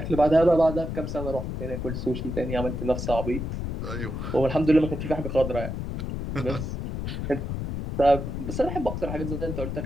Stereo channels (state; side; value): noise; left; rumble, 4 dB below the sound